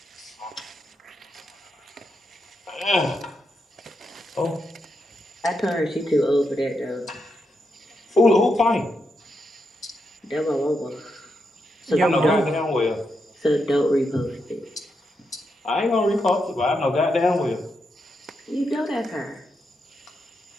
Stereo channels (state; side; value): normal; both; correlation 0.83